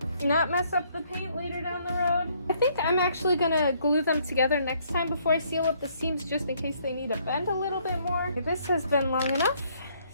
not mess up the paint later down the road. I think I'm actually gonna glue them together next time before I seal up the seams, just in case they need to bend a little bit more. This has been long enough,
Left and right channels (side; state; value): both; inverted; correlation -0.67